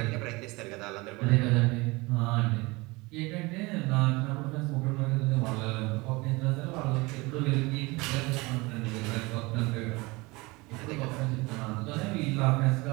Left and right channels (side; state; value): left; quieter; 23.9 dB